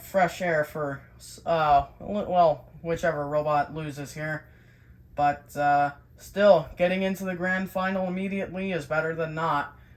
fresh air for, well, whichever robot loses here. But still, getting into the Grand Final immediately is better than not.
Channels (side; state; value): both; identical; correlation 1.00